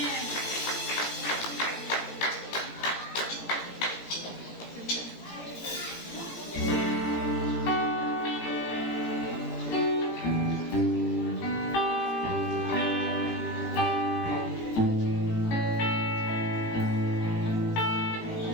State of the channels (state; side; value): late; right; 17 ms